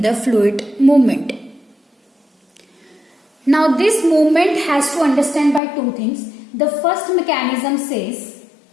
the fluid movement. Now this movement has to understand by 2 things. The first mechanism is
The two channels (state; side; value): drops out; right; at 5.6 s